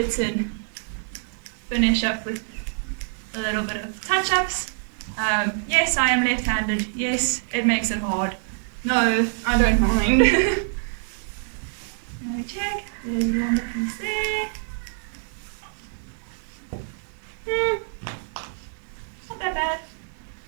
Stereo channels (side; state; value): left; silent; digital silence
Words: and finish up with a little bit of touch-ups. Yes, I am left-handed. Yes, it makes it hard. No, I don't mind. Let me check. There's a longer piece there. Not that bad.